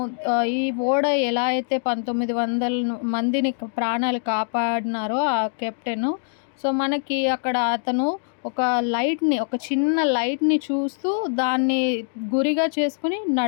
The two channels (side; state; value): right; silent; digital silence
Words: ఈ ఓడ ఎలా అయితే 1900 మందిని ప్రాణాలు కాపాడినారో ఆ కెప్టెను. సో మనకి అక్కడ అతను ఒక చిన్న లైట్ని చూస్తూ దాన్ని గురిగా చేసుకుని